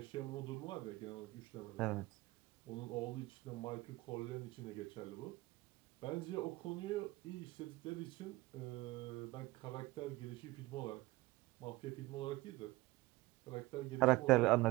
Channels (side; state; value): left; quieter; 20.0 dB